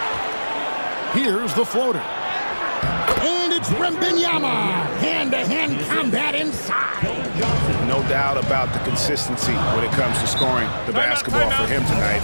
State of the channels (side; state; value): both; inverted; correlation -1.00